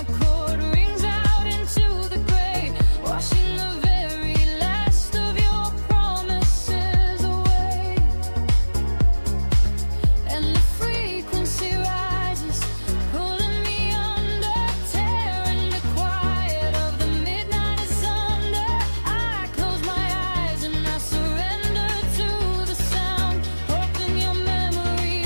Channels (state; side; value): inverted; both; correlation -1.00